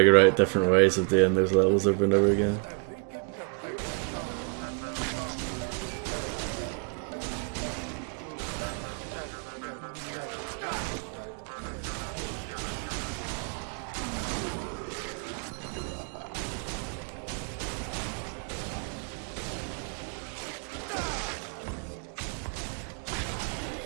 out different ways of doing those levels over and over again.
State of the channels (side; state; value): left; quieter; 39.4 dB